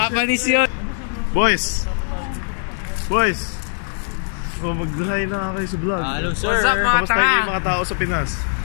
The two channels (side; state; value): right; silent; digital silence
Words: yun. Boys! Oh, mag-hi na kayo sa vlog. Hello sir. What's up mga Kamusta kayo mga tao sa Pinas?